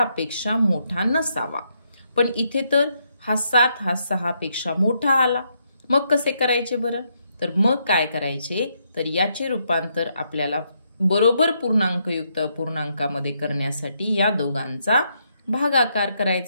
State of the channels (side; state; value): both; inverted; correlation -0.77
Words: मोठा नसावा. पण इथे तर हा 7 हा 6 पेक्षा मोठा आला. मग कसे करायचे बरं? तर मग काय करायचे? तर याचे रूपांतर आपल्याला बरोबर पूर्णांकयुक्त अपूर्णांकामध्ये करण्यासाठी या दोघांचा भागाकार